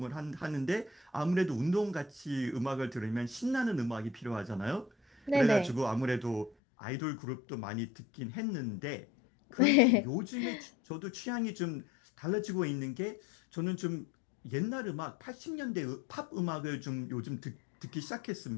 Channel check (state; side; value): drops out; right; at 6.6 s